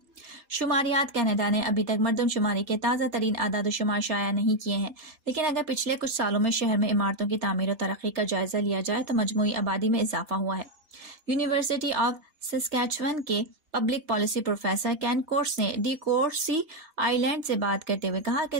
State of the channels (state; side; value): late; left; 4.2 ms